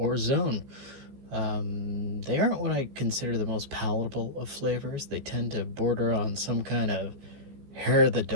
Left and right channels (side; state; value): left; late; 14 ms